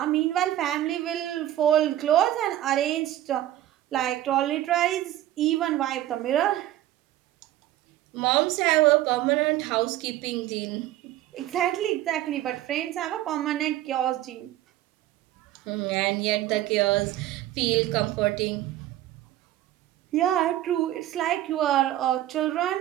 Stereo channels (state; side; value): quieter; left; 13.9 dB